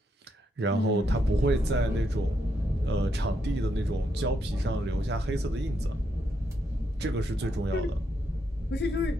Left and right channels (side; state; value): both; normal; correlation 0.79